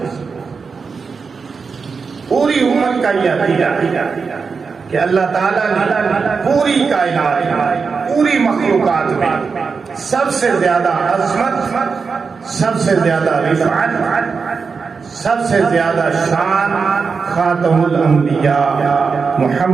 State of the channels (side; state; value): left; quieter; 5.2 dB